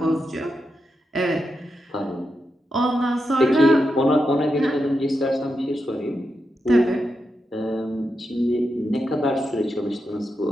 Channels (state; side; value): normal; both; correlation 0.87